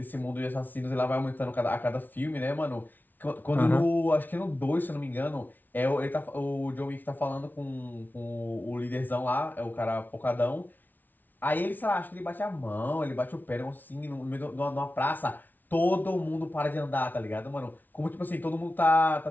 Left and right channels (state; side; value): late; right; 0.084 ms